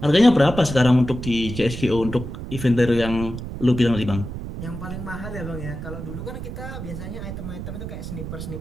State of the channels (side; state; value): right; noise; rumble, 8 dB below the sound